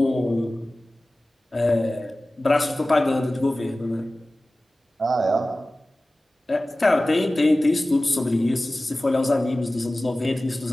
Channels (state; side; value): normal; both; correlation 0.97